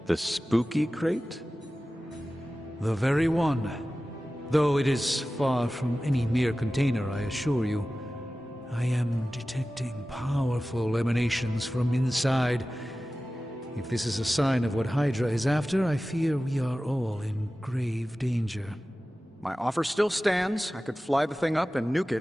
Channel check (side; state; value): both; normal; correlation 0.96